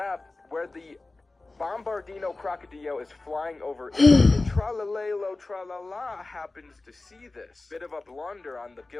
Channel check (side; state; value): right; quieter; 3.2 dB